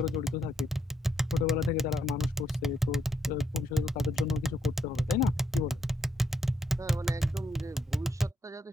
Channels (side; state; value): both; normal; correlation 0.76